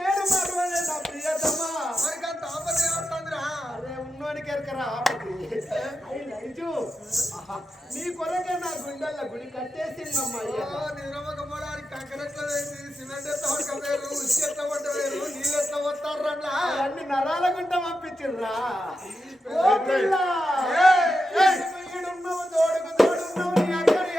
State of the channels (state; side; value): normal; both; correlation 0.88